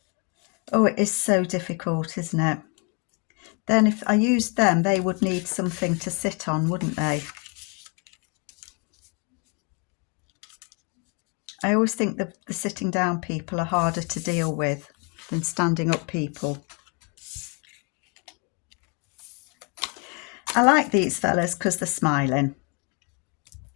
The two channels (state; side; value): quieter; right; 33.2 dB